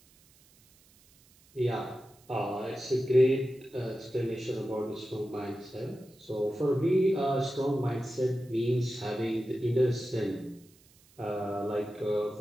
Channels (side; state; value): right; noise; hiss, 29 dB below the sound